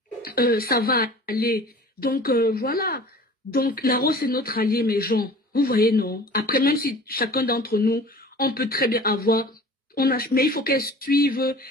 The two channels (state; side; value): normal; both; correlation 0.43